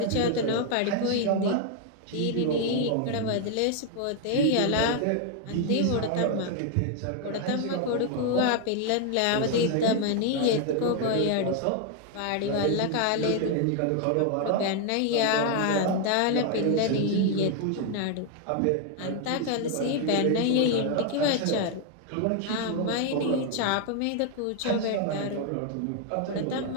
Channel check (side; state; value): both; different; correlation 0.00